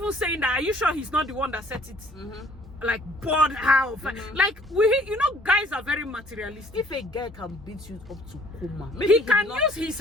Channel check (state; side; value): normal; both; correlation 0.57